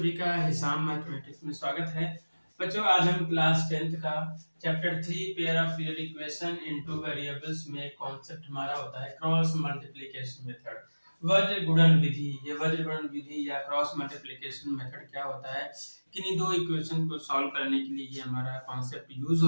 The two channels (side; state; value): both; inverted; correlation -1.00